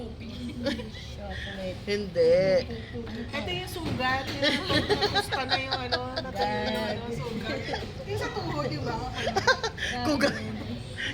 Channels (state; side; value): identical; both; correlation 1.00